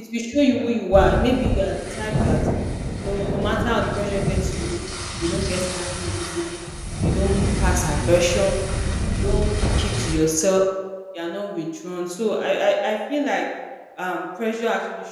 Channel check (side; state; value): both; identical; correlation 1.00